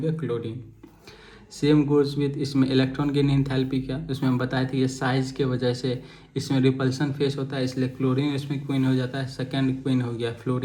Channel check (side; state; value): both; identical; correlation 1.00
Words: क्लोरीन। सेम गोज विथ इसमें इलेक्ट्रॉन गेन एंथैल्पी क्या, उसमें हम बताए थे ये साइज के वजह से इसमें रिपल्सन फेस होता है, इसलिए क्लोरीन इसमें क्वीन हो जाता है, सेकेंड क्वीन हो गया